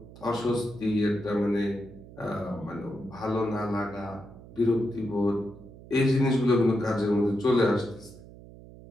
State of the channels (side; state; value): right; noise; hum, 18 dB below the sound